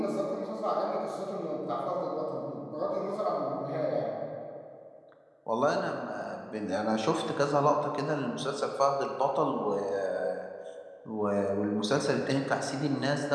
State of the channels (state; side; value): identical; both; correlation 1.00